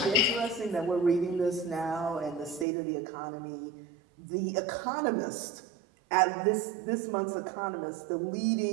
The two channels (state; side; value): drops out; left; at 2.7 s